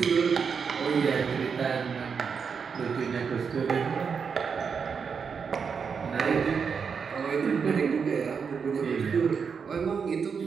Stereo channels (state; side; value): quieter; left; 6.1 dB